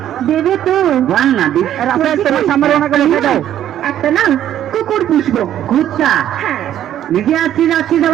দেবে তো বল না একটা না কুকুর পুষবো। কুত্তা? হ্যাঁ। নিজে আসছিস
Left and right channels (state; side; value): quieter; left; 11.3 dB